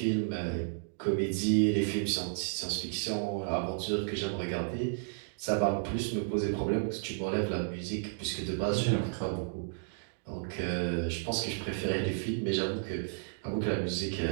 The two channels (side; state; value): left; silent; digital silence